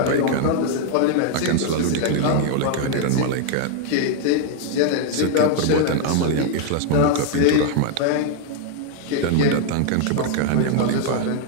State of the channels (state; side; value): different; both; correlation 0.00